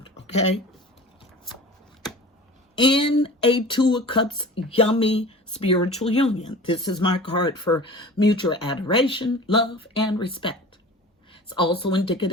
okay? In a 2 of Cups, yummy spiritual union. This is my card for mutual adoration, love, and respect. It's also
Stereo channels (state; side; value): normal; both; correlation 0.39